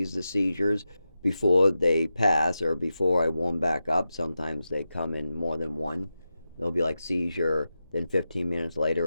the seizures before they pass or before I warm back up. Sometimes they come in more than one. There'll be like seizure, then 15 minutes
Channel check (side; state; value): both; inverted; correlation -0.91